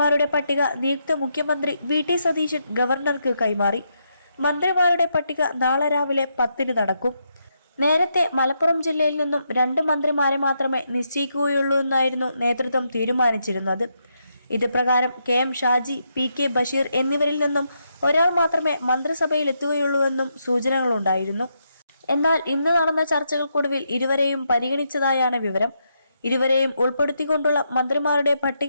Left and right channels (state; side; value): inverted; both; correlation -0.80